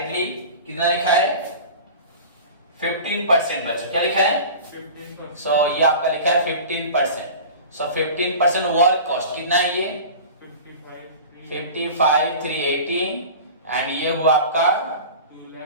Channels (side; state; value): both; inverted; correlation -0.36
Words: कितना लिखा है 15%. बच्चों क्या लिखा है 15%. सो ये आपका लिखा है 15%. सो 15% वर्क कॉस्ट कितना है ये 55,300. 55,380. एंड ये हुआ आपका